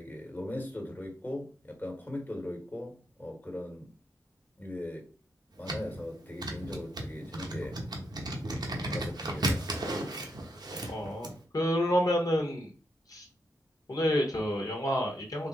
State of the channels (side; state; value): both; normal; correlation 0.80